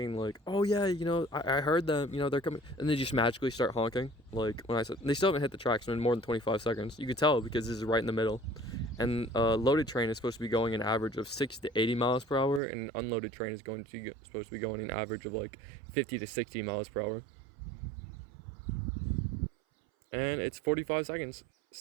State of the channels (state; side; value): drops out; left; at 12.6 s